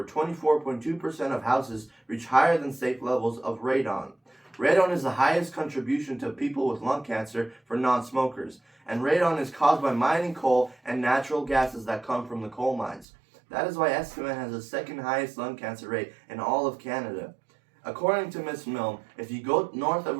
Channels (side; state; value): left; drops out; at 13.1 s